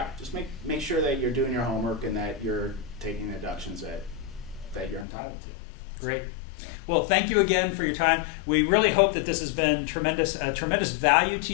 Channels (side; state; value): right; drops out; at 5.1 s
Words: just make sure that you're doing your homework and that you're taking the deductions that you're entitled to. Great. Well, thank you again for your time. We really hope that this has been tremendous value to